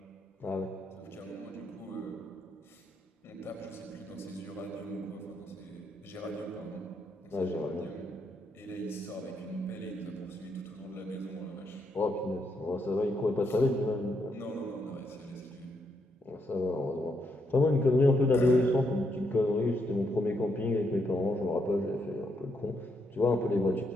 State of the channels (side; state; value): both; normal; correlation 0.78